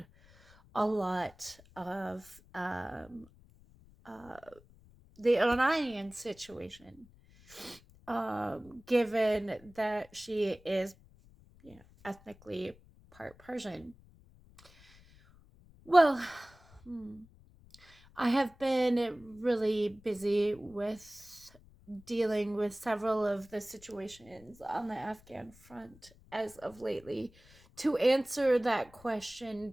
a lot of uh, the Iranian situation, given that she is, ethnically part Persian. Well, hmm, I have been really busy with dealing with several of the situations on the Afghan front as of lately to answer that question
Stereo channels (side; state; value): left; noise; rumble, 25 dB below the sound